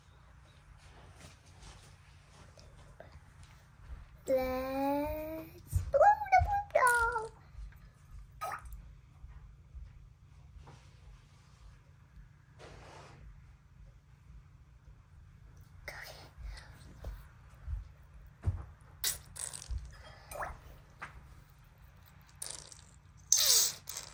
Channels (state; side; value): identical; both; correlation 1.00